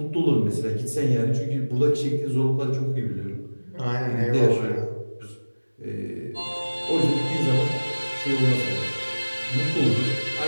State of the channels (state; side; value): inverted; both; correlation -1.00